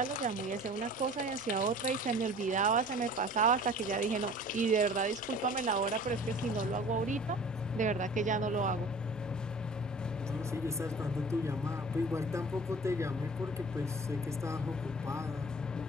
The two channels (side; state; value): both; normal; correlation 0.45